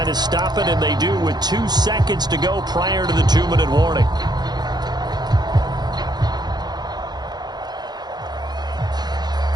to stop it, and they do with 2 seconds to go prior to the 2-minute warning.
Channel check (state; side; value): late; left; 0.20 ms